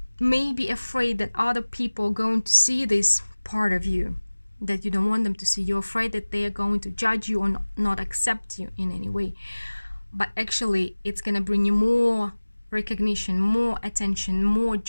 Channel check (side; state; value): both; inverted; correlation -1.00